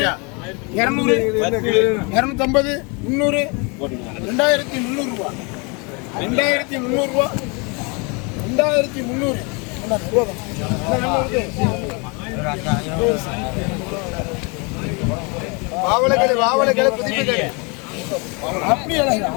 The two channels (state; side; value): quieter; right; 31.5 dB